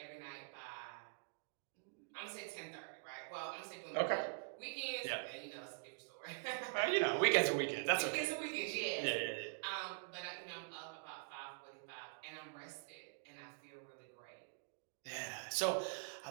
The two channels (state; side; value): silent; left; digital silence